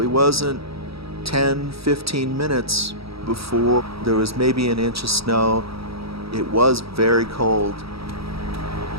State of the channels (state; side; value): late; left; 0.76 ms